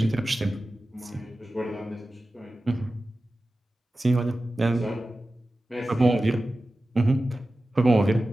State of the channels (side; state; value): both; normal; correlation 0.95